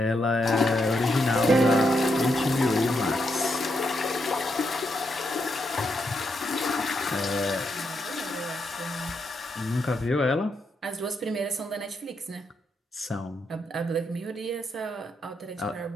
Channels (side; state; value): both; normal; correlation 0.81